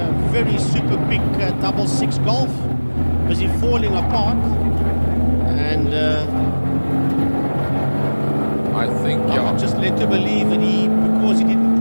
very super quick double 6 Golf, busy falling apart, and I think I'm just led to believe that because he didn't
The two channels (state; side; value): inverted; both; correlation -1.00